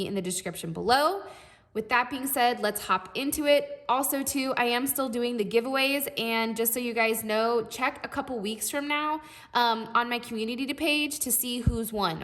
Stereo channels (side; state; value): both; identical; correlation 1.00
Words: in the description below. With that being said, let's hop into it. Also, too, I am still doing the giveaways, and just so you guys know, check a couple weeks from now on my community page to see who's